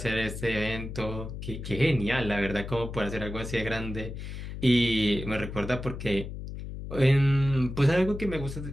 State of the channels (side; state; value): left; noise; hum, 8 dB below the sound